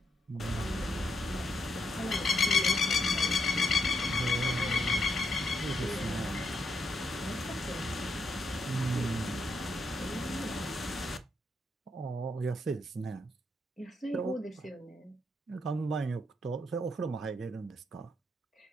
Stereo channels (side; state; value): both; normal; correlation 0.78